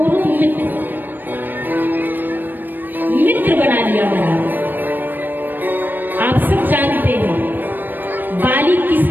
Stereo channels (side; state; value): left; late; 0.091 ms